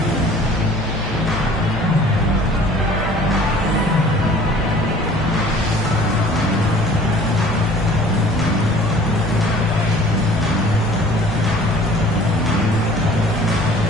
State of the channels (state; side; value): normal; both; correlation 0.50